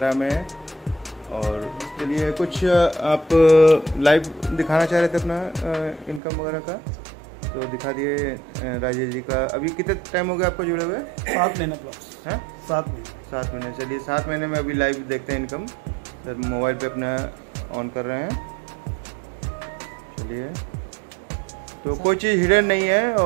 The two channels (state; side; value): drops out; left; at 6.2 s